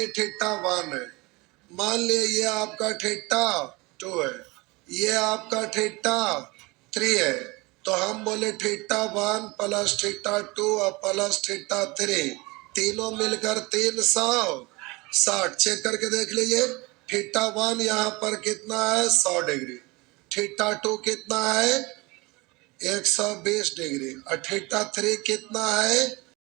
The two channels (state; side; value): quieter; left; 24.3 dB